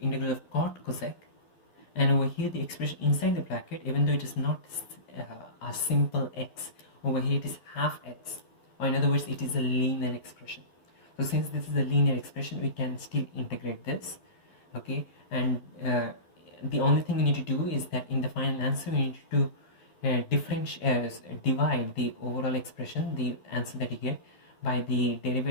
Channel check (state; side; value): late; right; 11 ms